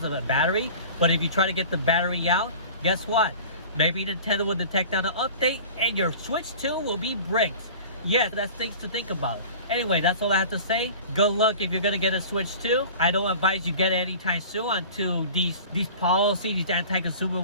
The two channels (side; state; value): both; inverted; correlation -0.40